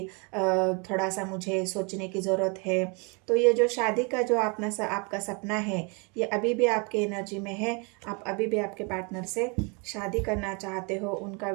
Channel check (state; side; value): quieter; left; 32.3 dB